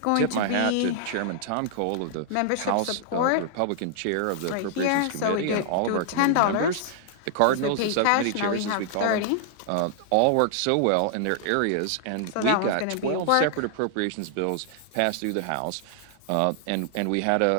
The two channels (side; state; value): both; different; correlation -0.01